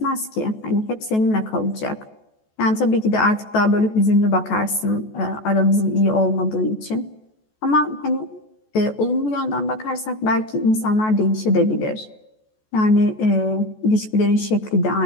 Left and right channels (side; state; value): right; late; 14 ms